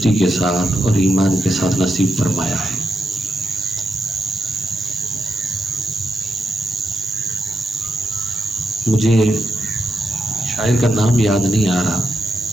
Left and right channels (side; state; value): both; normal; correlation 0.85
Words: کے ساتھ اور ایمان کے ساتھ نصیب فرمایا ہے. مجھے شاعر کا نام یاد نہیں آ رہا،